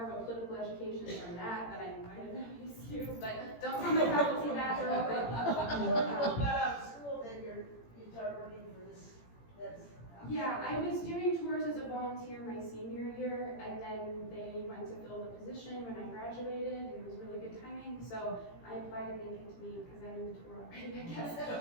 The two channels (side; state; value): right; late; 17 ms